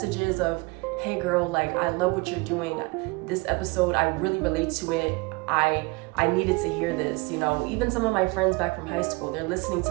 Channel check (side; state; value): left; quieter; 26.2 dB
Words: of, hey girl, like, I love what you're doing. This episode, I really relate to it. I needed to hear this, you know. Even some of my friends back from high school, they're listening to